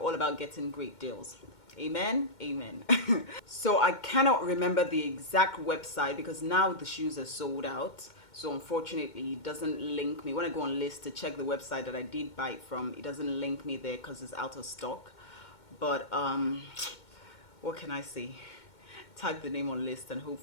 about getting great deals. Amen, amen. So I cannot remember the exact website because now the shoes are sold out. So unfortunately, it doesn't link me. When I go on List to check the website that I did buy it from, it doesn't link me there because it's out of stock. But what can I say? Type the name on List and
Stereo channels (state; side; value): late; right; 2.2 ms